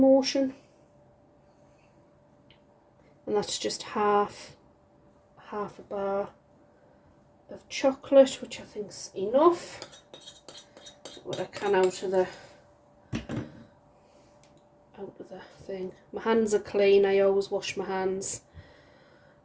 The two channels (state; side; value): identical; both; correlation 1.00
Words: And that's just half a bar of chocolate, which I think's enough. Get what I can out of the thing. My hands are clean. I always wash my hands.